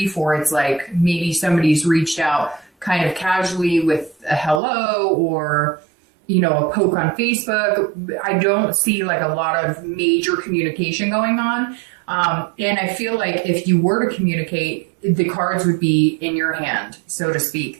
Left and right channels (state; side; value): drops out; left; at 4.6 s